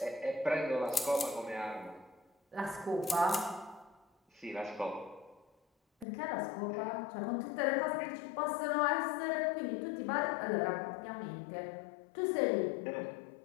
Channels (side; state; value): right; drops out; at 6.1 s